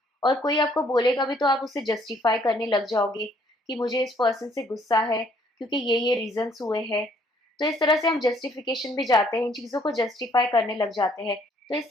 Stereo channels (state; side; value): normal; both; correlation 0.64